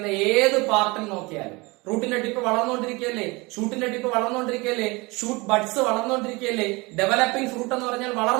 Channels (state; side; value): quieter; left; 24.9 dB